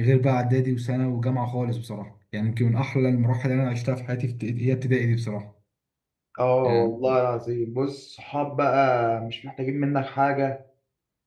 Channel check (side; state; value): both; identical; correlation 1.00